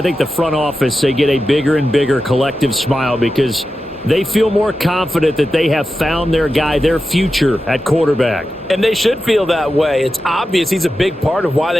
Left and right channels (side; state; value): both; normal; correlation 0.92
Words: think the front office, they get a bigger and bigger collective smile because they feel more confident that they have found their guy, their future at quarterback. And they should feel that way. It's obvious he's a big part of why